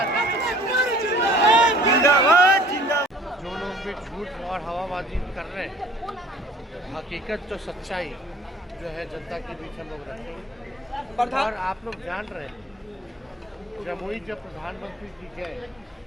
जिंदाबाद जिंदाबाद। जो लोग भी झूठ और हवाबाजी कर रहे हैं, हकीकत तो सच्चाई जो है जनता के बीच हम लोग रखेंगे। और आप लोग जान रहे हैं, जमुई जब प्रधानमंत्री जी गए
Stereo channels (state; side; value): normal; both; correlation 0.51